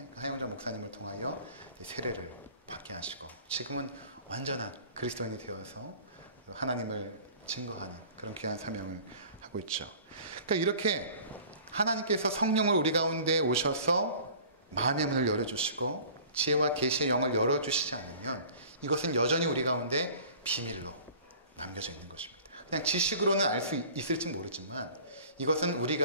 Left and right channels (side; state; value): both; inverted; correlation -0.47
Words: 하영조 목사님을 통하여 세례를 받게 하시고 지금은 완전한 그리스도인이 되어서 하나님을 증거하는 그런 귀한 사명을 하고 있죠. 그러니까 이렇게 하나님께서 성령을 우리 가운데 오셔서 마음의 문을 열어주시고 지혜와 계시의 영을 열어주시지 않으면 이것은 여전히 우리 가운데 비밀로 남겨져 있는 것입니다. 그냥 지식으로는 알 수 있을지 모르지만 이것은 우리